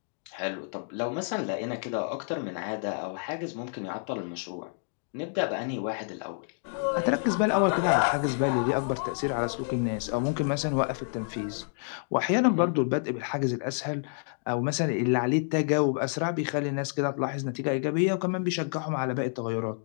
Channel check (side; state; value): right; silent; 59 dB below the other